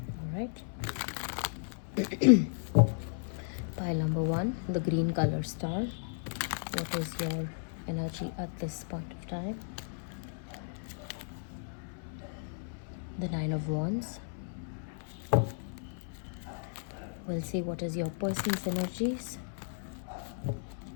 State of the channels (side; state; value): right; silent; 55 dB below the other